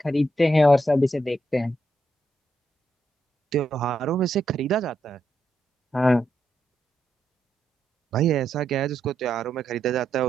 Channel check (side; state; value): both; normal; correlation 0.81